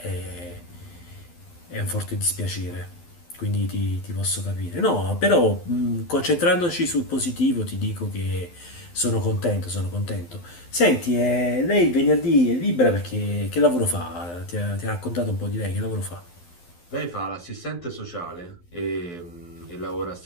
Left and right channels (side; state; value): right; late; 12 ms